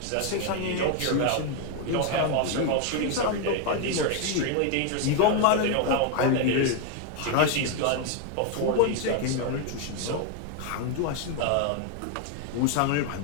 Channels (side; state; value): both; different; correlation 0.01